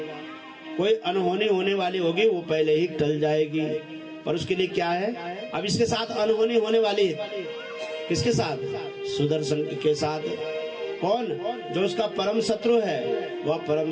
कोई अनहोनी होने वाली होगी वो पहले ही टल जाएगी। पर उसके लिए क्या है, अब इसके साथ अनहोनी होने वाली है। किसके साथ? सुदर्शन के साथ। कौन? जो उसका परम शत्रु है, वह परम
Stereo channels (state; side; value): identical; both; correlation 1.00